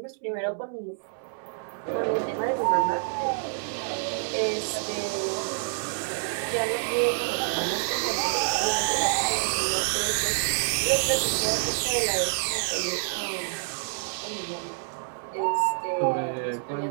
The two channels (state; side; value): silent; left; 60 dB below the other